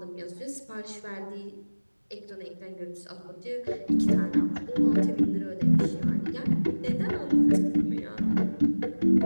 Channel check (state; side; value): inverted; both; correlation -1.00